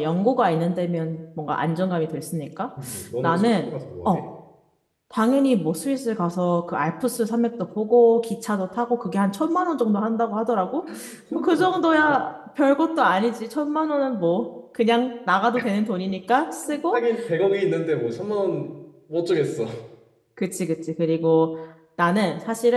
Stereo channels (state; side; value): identical; both; correlation 1.00